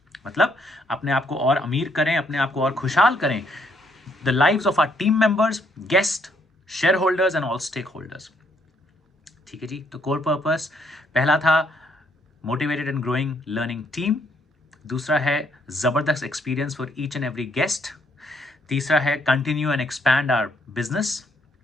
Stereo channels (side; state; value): both; normal; correlation 0.70